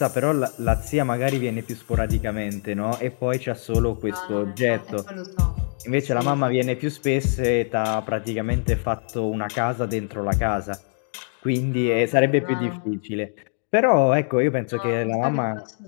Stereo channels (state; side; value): silent; right; digital silence